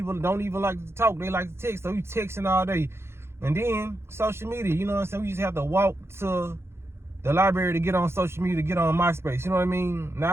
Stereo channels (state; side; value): late; left; 0.12 ms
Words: don't even like to talk, they like to text, so you texting all day. And then social media, you know what I'm saying? We just have to walk to the library to get on social media, to get on MySpace, you know what I mean?